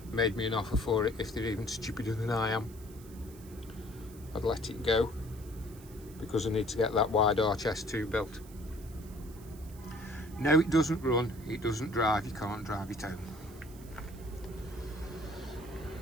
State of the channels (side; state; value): right; noise; hiss, 21 dB below the sound